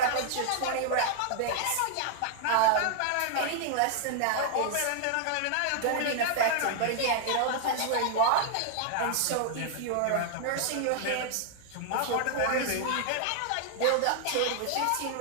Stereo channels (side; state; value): both; different; correlation 0.00